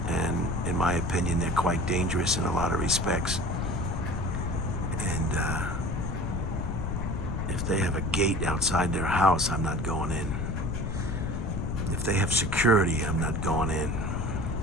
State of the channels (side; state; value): left; noise; rumble, 2 dB below the sound